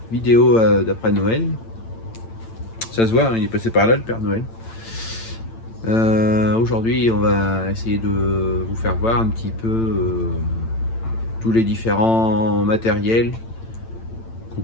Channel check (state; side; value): late; right; 8.9 ms